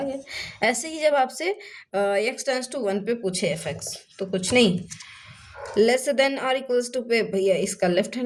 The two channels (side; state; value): both; identical; correlation 1.00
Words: गया। ऐसे ही जब आपसे x टेंस टू 1 पे पूछे fx, तो कुछ नहीं, लेस देन और इक्वल्स टू पे भैया इसका लेफ्ट